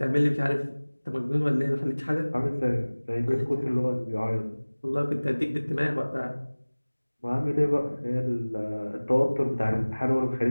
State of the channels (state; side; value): inverted; both; correlation -1.00